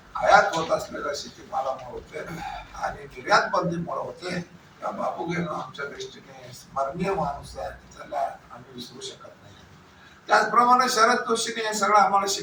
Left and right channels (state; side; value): identical; both; correlation 1.00